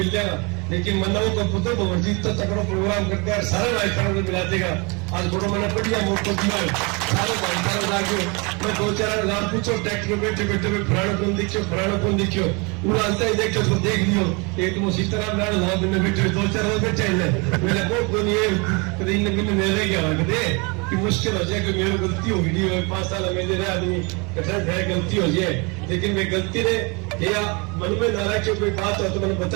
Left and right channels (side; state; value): left; quieter; 30.0 dB